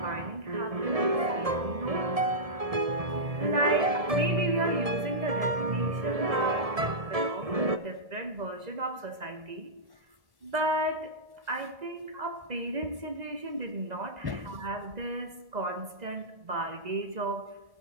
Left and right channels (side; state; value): left; late; 2.0 ms